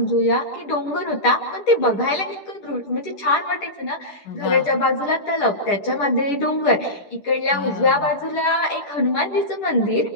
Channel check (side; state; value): right; late; 10 ms